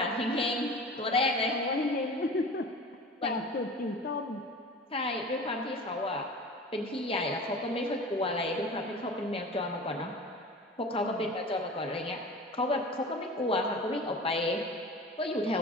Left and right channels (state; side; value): normal; both; correlation 0.37